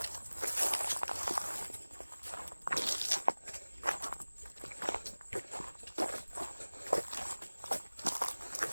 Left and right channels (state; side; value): inverted; both; correlation -1.00